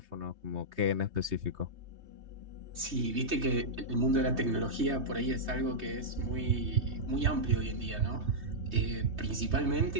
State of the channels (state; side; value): late; left; 3.2 ms